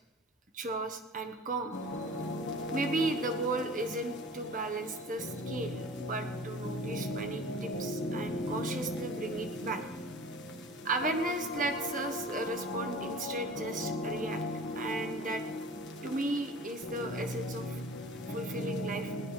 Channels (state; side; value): normal; both; correlation 0.42